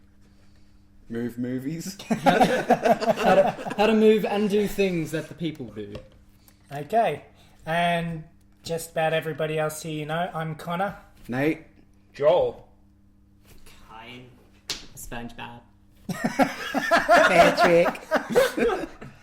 Move movies? how to move and do things that the people do. Okay, and just about everybody else here you know, I'm Connah. Nate? Joel. Kayne. SpongeBob. Patrick.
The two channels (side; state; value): both; identical; correlation 1.00